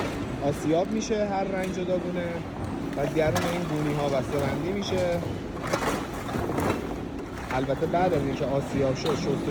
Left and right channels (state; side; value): identical; both; correlation 1.00